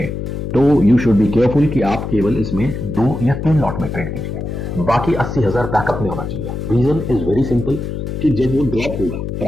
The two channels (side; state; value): left; noise; hum, 5 dB below the sound